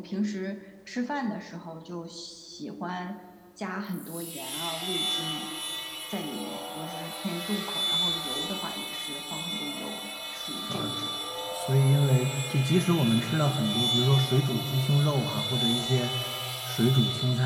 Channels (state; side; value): identical; both; correlation 1.00